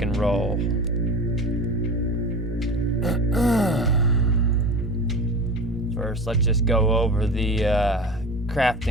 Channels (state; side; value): normal; both; correlation 0.33